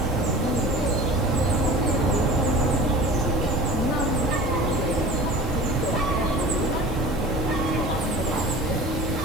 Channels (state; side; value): noise; left; hiss, 22 dB below the sound